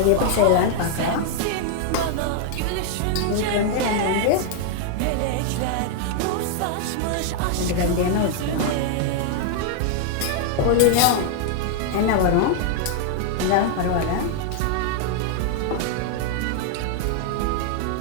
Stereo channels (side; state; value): both; different; correlation 0.00